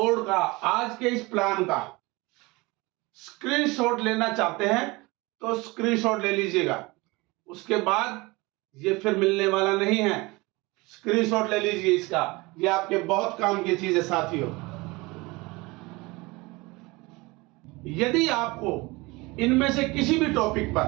का, आज के इस प्लान का स्क्रीनशॉट लेना चाहते हैं तो स्क्रीनशॉट ले लीजिएगा, उसके बाद ये फिर मिलने वाला नहीं है। स्क्रीनशॉट ले लीजिए इसका, ये आपके बहुत काम की चीज है साथियों। यदि आपको इनमें से किसी भी टॉपिक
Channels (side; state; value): left; quieter; 23.6 dB